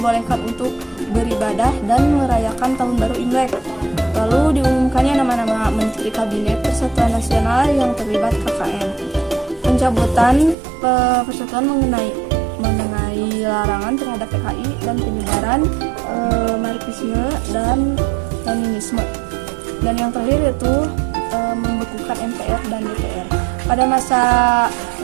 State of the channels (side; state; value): left; drops out; at 10.6 s